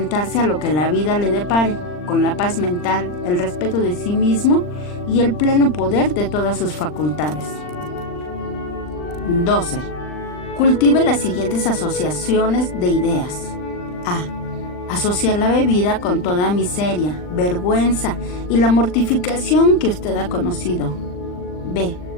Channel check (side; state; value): right; late; 39 ms